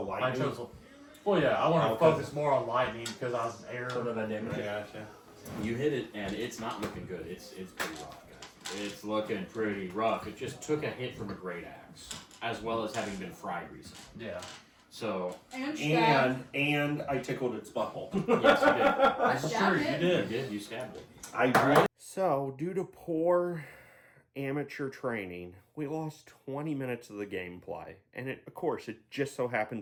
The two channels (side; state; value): both; identical; correlation 1.00